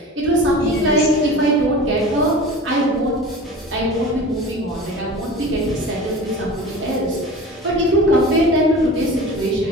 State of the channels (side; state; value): both; normal; correlation 0.37